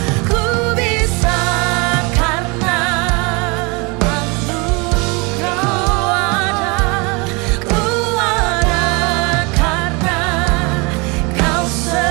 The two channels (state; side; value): quieter; left; 28.8 dB